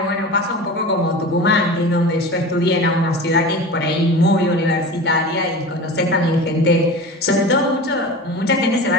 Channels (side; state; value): both; normal; correlation 0.33